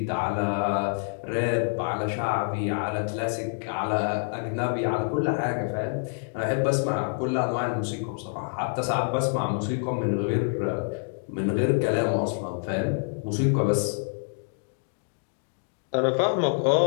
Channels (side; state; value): right; silent; digital silence